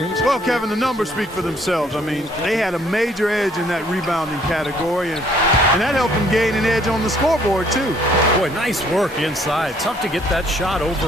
Well, Kevin, the numbers speak for themselves. I mean, they had a major edge in that rebounding category, and that helped them gain an edge on the scoreboard, too. Boy, nice work inside. Tough to get that shot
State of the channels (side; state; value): both; normal; correlation 0.63